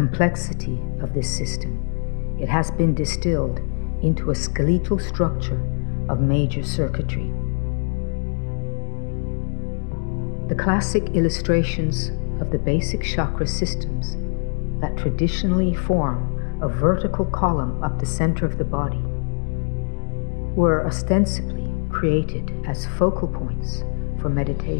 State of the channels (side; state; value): right; silent; 63 dB below the other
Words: of this system, it has been distilled into a skeletal structure of major circuitry. The classic illustrations of the basic chakra systems that traditionally form a vertical column up the center of the body were ostensibly created as focal points for